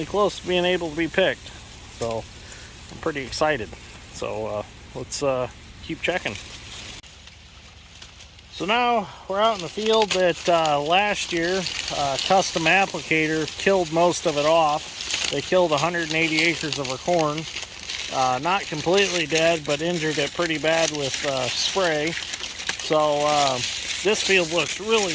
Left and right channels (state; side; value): identical; both; correlation 1.00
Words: close to being able to be picked. So I'm pretty excited. So let's keep checking. So now we're out in the field that last year Custom Applicator killed most of it off. They killed 180 acres of our corn. Not completely dead, but injured it pretty bad with spray. So this field looks really